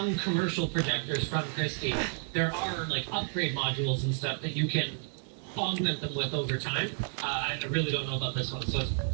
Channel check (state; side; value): silent; left; 57 dB below the other